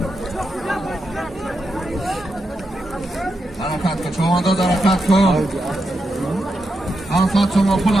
حرکت کن چون داد حرکت کن حرکت شما پول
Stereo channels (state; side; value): normal; both; correlation 0.86